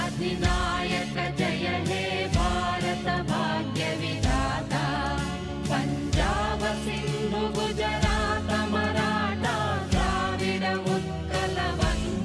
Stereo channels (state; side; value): identical; both; correlation 1.00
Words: अधिनायक जय हे भारत भाग्य विधाता पंजाब सिंधु गुजरात मराठा द्राविड उत्कल